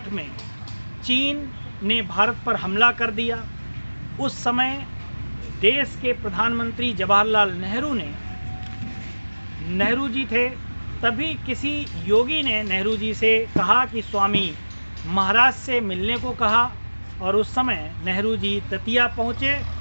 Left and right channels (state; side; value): inverted; both; correlation -1.00